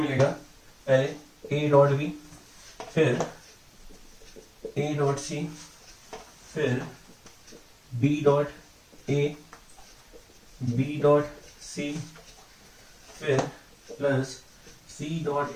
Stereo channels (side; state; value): both; identical; correlation 1.00